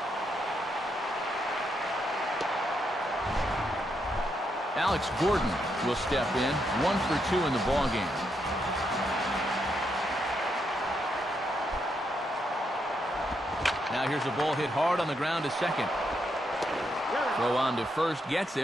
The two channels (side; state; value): both; normal; correlation 0.80